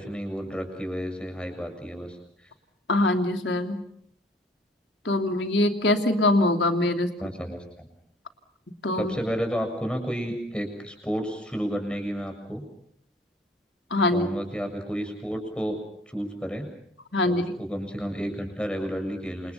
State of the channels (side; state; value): both; normal; correlation 0.56